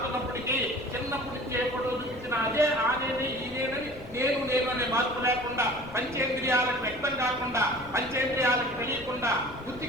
చిన్నప్పటి నుంచి ఎప్పుడో చూపించిన అదే ఆనేది ఈనేనని నేను అనే మార్పు లేకుండా, పంచేంద్రియాలకు వ్యక్తం కాకుండా, పంచేంద్రియాలకు తెలియకుండా,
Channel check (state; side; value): noise; left; rumble, 18 dB below the sound